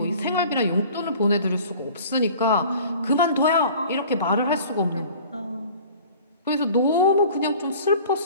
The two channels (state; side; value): inverted; both; correlation -0.46